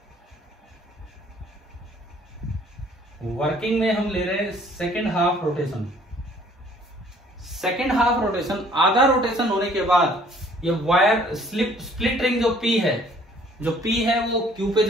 वर्किंग में हम ले रहे हैं second half rotation. Second half rotation, आधा रोटेशन होने के बाद ये वायर स्प्लिट रिंग जो पी है, वो क्यू पे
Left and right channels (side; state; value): both; normal; correlation 0.57